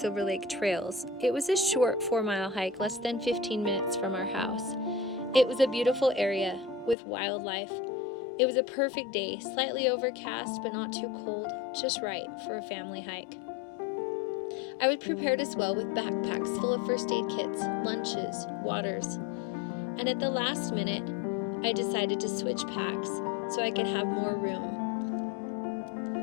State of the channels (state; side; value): drops out; right; at 7.0 s